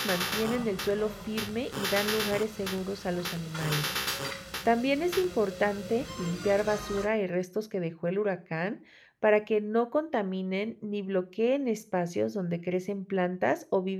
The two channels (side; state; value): both; identical; correlation 1.00